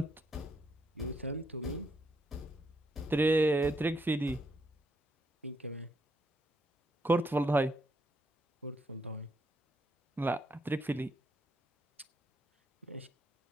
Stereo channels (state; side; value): normal; both; correlation 0.77